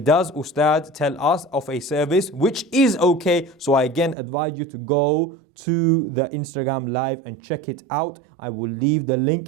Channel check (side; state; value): left; drops out; at 4.2 s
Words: Ustad, tell us of a service which is okay. So I again advise you to go to the Instagram live and check it out. I will leave the